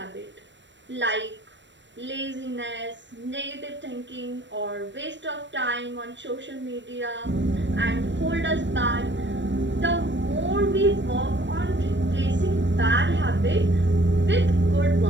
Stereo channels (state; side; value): late; left; 0.53 ms